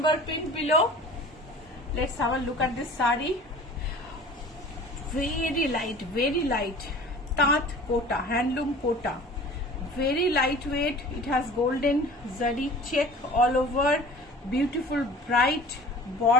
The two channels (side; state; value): both; normal; correlation 0.43